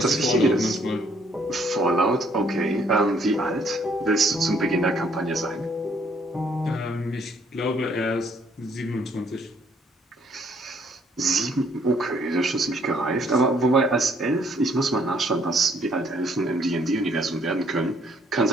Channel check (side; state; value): both; normal; correlation 0.66